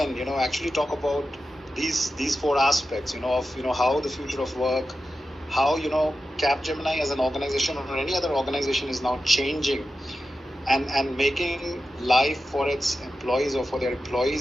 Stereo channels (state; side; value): normal; both; correlation 0.91